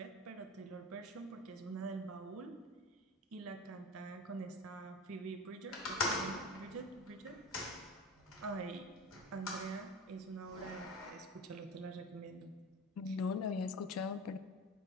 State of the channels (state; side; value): normal; both; correlation 0.31